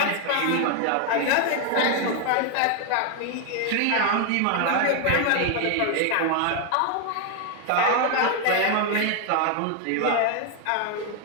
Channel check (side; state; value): both; different; correlation 0.01